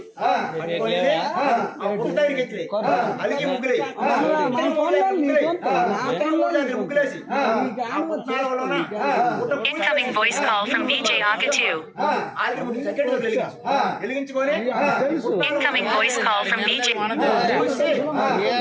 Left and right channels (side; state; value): both; identical; correlation 1.00